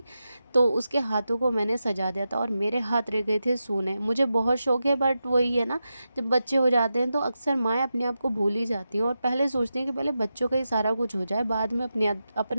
तो उसके हाथों को मैंने सजा दिया था और मेरे हाथ रह गए थे सूने। मुझे बहुत शौक है, बट वही है ना, जब बच्चे हो जाते हैं तो अक्सर माएँ अपने आप को भूल ही जाती हैं और पहले सोचती हैं कि पहले बच्चों का ही सारा कुछ हो जाए, बाद में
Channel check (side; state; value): both; inverted; correlation -0.89